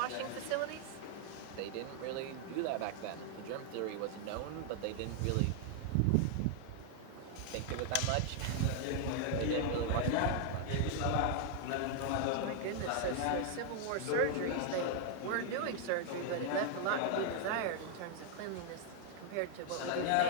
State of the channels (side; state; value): both; different; correlation 0.00